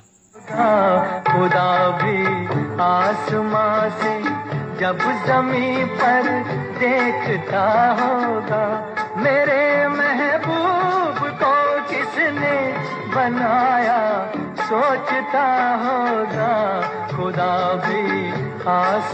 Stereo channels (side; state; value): both; identical; correlation 1.00